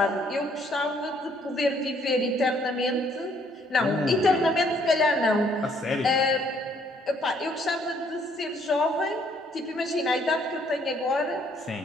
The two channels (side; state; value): both; normal; correlation 0.65